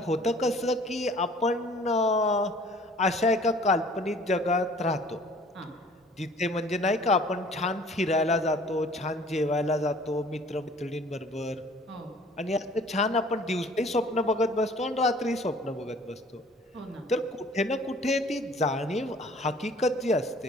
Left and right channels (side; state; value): both; normal; correlation 0.52